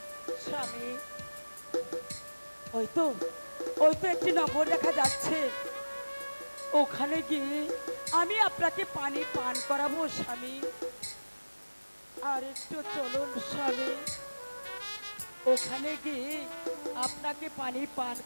স্বামী, ওই তো ওই তো একটি নগর দেখা যাচ্ছে, ওখানে গিয়ে আমি আপনাকে পানি পান করাবো স্বামী। আর একটু চলুন স্বামী, ওখানে গিয়ে আপনাকে পানি পান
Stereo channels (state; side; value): inverted; both; correlation -1.00